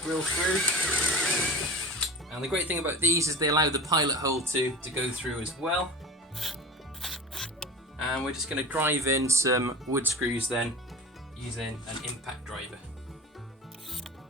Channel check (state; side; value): normal; both; correlation 0.34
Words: drill through. And the great thing about these is they allow the pilot hole to go through as well. And we're just going to drive in some wood screws then using an impact driver.